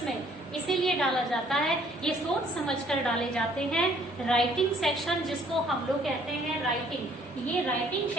में इसीलिए डाला जाता है, ये सोच समझकर डाले जाते हैं. राइटिंग सेक्शन जिसको हम लोग कहते हैं राइटिंग, ये राइटिंग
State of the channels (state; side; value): normal; both; correlation 0.61